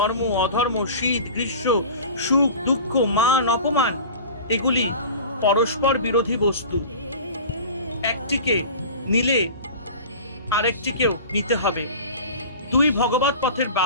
অধর্ম, শীত গ্রীষ্ম, সুখ দুঃখ, মান অপমান এগুলি পরস্পর বিরোধী বস্তু। একটিকে নিলে আরেকটিকেও নিতে হবে, দুই ভগবৎ পথের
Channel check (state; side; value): inverted; both; correlation -0.37